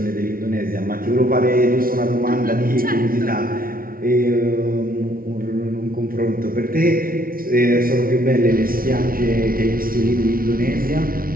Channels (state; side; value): late; left; 0.42 ms